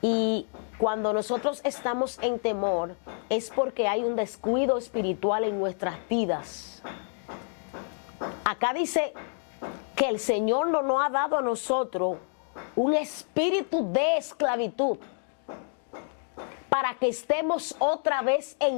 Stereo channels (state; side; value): silent; right; 57 dB below the other